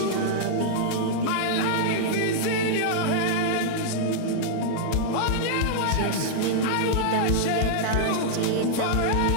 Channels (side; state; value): both; different; correlation -0.01